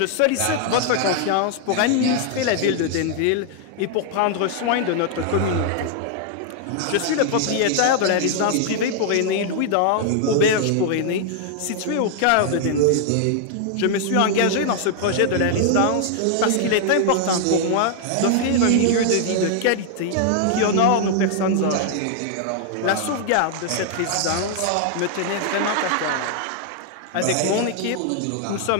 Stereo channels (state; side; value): different; both; correlation 0.00